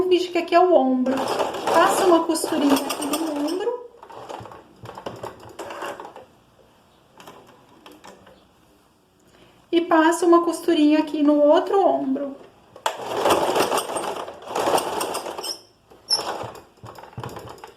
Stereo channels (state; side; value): identical; both; correlation 1.00